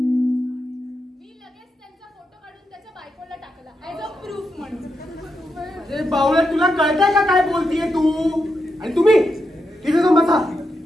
मी लगेच त्यांचा फोटो काढून त्याच्या बायकोला टाकला ऍज अ प्रूफ म्हणून. अरे बावळ्या तुला कळतंय का काय बोलतीये तू? आणि तुम्ही तिथे जाऊन बसा.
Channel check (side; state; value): both; normal; correlation 0.85